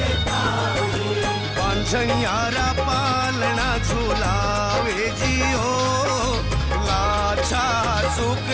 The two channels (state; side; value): identical; both; correlation 1.00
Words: पाऊजी पांझनियारा पालना झूलावे जियो लाछा